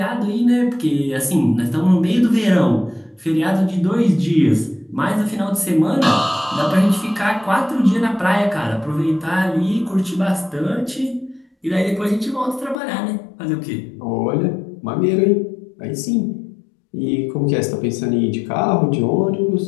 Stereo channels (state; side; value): drops out; right; at 12.8 s